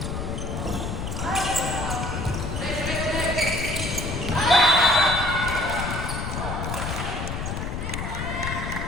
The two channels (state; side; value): noise; left; rumble, 4 dB below the sound